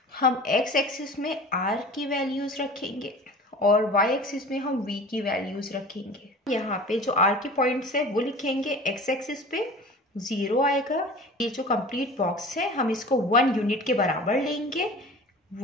हम एक्स एक्सिस में R की वैल्यूज रखेंगे और वाई एक्सिस में हम V की वैल्यूज रखेंगे। यहाँ पे जो R के पॉइंट्स है वो लिखेंगे, एक्स एक्सिस पे 0 आएगा। ये जो कंप्लीट बॉक्स है हम इसको 1 यूनिट के बराबर लेंगे।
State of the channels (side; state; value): both; normal; correlation 0.40